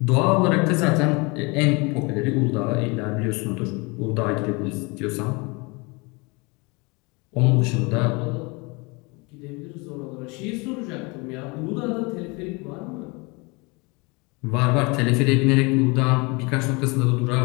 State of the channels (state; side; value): quieter; right; 27.8 dB